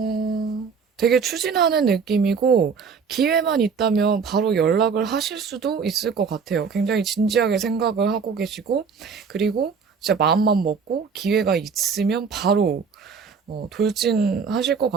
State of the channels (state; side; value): quieter; left; 5.8 dB